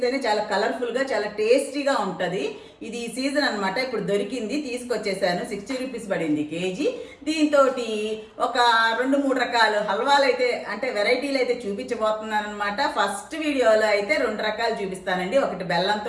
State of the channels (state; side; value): identical; both; correlation 1.00